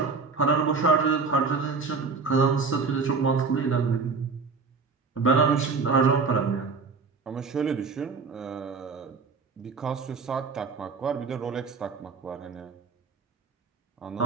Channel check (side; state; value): left; quieter; 4.8 dB